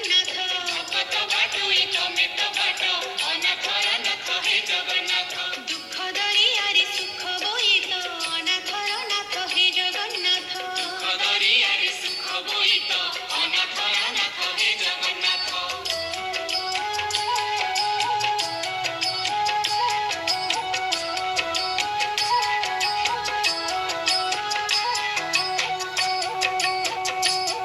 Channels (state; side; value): identical; both; correlation 1.00